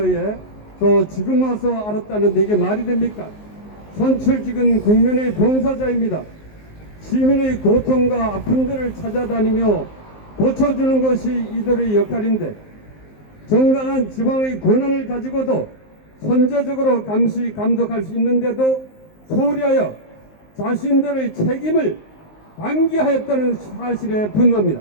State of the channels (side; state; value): right; late; 19 ms